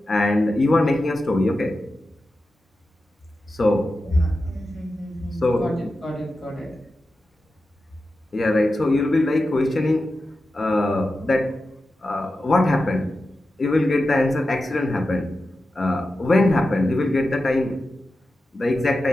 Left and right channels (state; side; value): normal; both; correlation 0.92